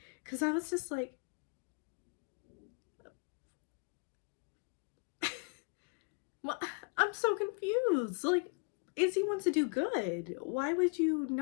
Because I was just like, well, I'm so confused. Like, Izzy wants to do good. Why would you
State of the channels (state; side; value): quieter; right; 37.7 dB